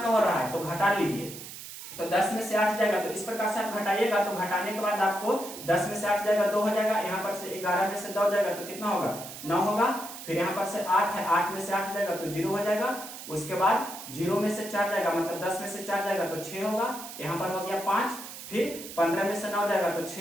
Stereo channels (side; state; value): right; noise; hiss, 12 dB below the sound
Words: का हो रहा है, तो घटा लीजिए, तो 10 में से 8 जाएगा, तो इस प्रकार से आप घटाइएगा, तो घटाने के बाद आपको 10 में से 8 जाएगा 2 हो जाएगा, यहाँ पर से 11 में से 2 जाएगा तो कितना होगा 9 होगा, फिर यहाँ पर से 8 है, 8 में से 8 जाएगा तो 0 हो जाएगा, उसके बाद 0 में से 4 जाएगा, मतलब 10 में से 4 जाएगा तो 6 होगा, यहाँ पर हो गया 5, फिर 15 में से 9 जाएगा तो